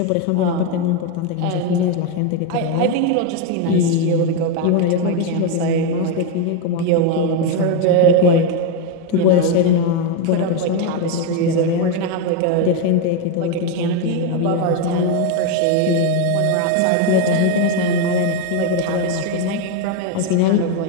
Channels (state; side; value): different; both; correlation 0.02